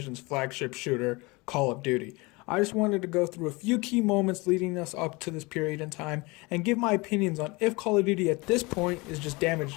flagship shooter, Call of Duty. I just wanted to go through a few key moments leading us up to this period in time and give my opinions on if Call of Duty at this point is just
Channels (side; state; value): right; quieter; 25.0 dB